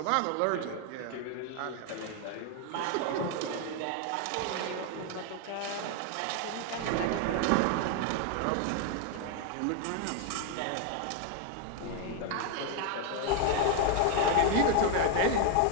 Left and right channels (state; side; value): different; both; correlation 0.00